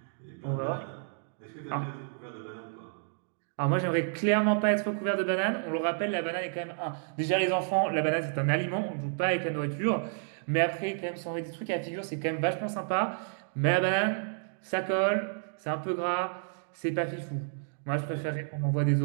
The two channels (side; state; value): left; silent; digital silence